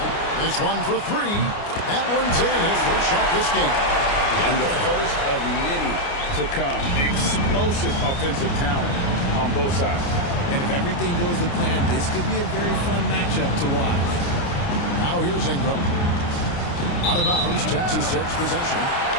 This one for 3. That one's in. His first shot this game. And the first of many to come. Explosive offensive talent on both sides. And if everything goes to plan, this could be a very fun matchup to watch. Now here's Ingram. Out of bounds, Texas takes possession.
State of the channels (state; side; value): late; right; 29 ms